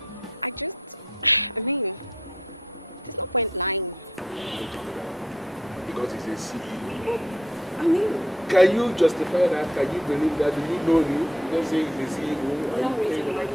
I mean, there's no point lying. Because he's a CEO. I mean, can you justify that? Can you believe that? Do you know him? You don't say he's a CEO. No reason why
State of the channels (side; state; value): both; normal; correlation 0.68